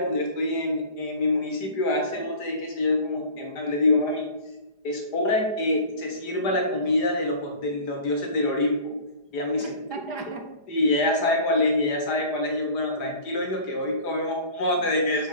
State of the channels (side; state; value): right; late; 4.9 ms